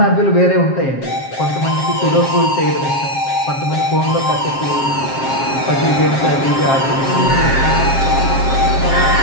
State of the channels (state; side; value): late; right; 7.5 ms